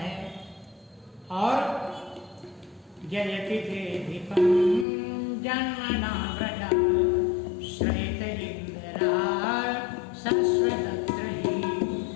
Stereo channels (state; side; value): drops out; right; at 4.9 s